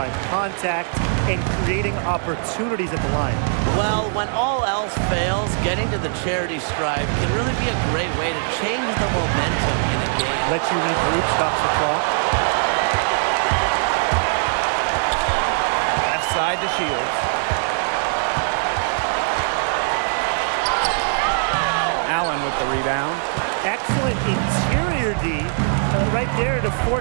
contact, and creating opportunities at the line. Well, when all else fails, getting to the charity stripe can really be a great way to change the momentum in a game. Lets you regroup, stops the clock. Left side to Shields. Allen with the rebound. Excellent interior D right there to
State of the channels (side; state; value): left; silent; digital silence